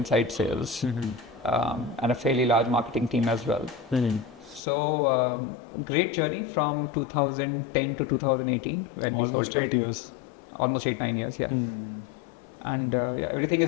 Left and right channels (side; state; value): right; drops out; at 4.6 s